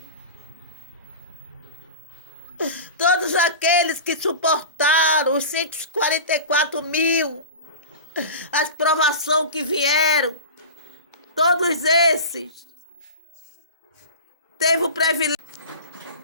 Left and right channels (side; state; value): both; inverted; correlation -0.32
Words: Todos aqueles que suportaram os 144 mil, as provações que vieram, todos esses teve o privilégio